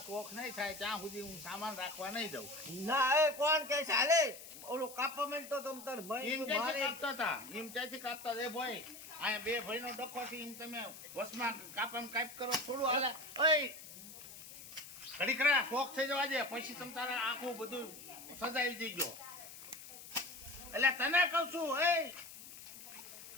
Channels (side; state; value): left; noise; hiss, 14 dB below the sound